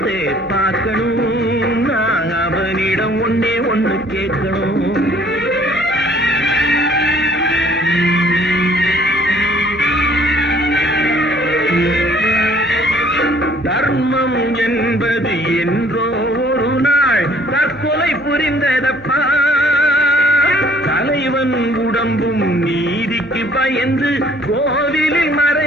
பார்க்கணும், நான் அவனிடம் ஒன்னே ஒண்ணு கேட்கணும். தர்மம் என்பது என்றோ ஒரு நாள் தற்கொலை புரிந்ததப்பா. தலைவன் உடம்பும் நீதிக்கு பயந்து கோவிலில்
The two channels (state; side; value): normal; both; correlation 0.58